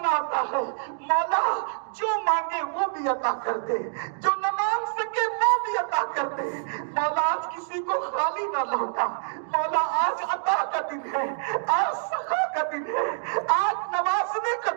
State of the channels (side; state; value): left; silent; digital silence